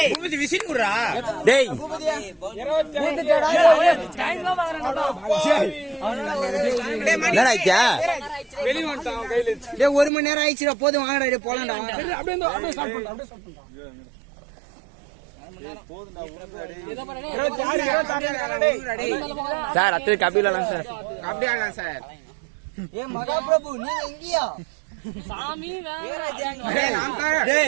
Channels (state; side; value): drops out; left; at 10.1 s